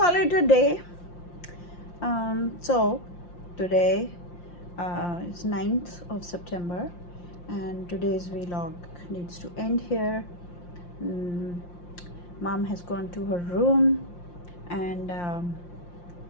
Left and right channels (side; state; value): right; late; 5.7 ms